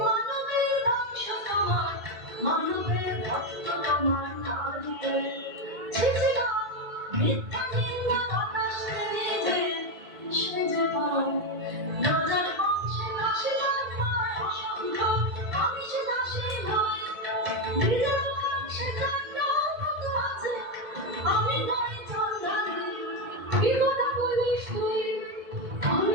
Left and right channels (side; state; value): left; late; 2.1 ms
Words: ধ্বংস তোমার মানবের ভক্ত তোমার না দিলে মিথ্যা নিন্দা বাতাস নিজে সেজে পাও রাজার বংশে দাসী জন্মায় অসংখ্য আমি সে দাসী নয় নিজের বংশে জন্মার মতো আছে আমি নয় চন্দ্রানী কি কথা বলিস তুই